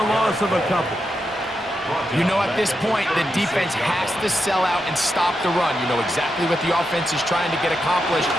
loss of a couple. You know, at this point, the defense has to sell out and stop the run. You know exactly what the offense is trying to get accomplished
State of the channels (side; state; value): both; normal; correlation 0.86